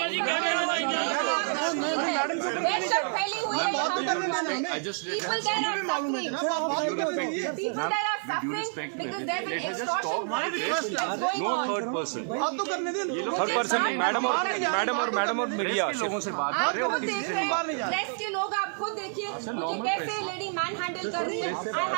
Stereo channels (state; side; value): silent; left; 59 dB below the other